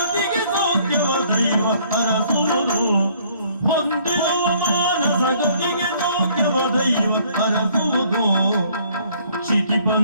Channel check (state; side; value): inverted; both; correlation -0.61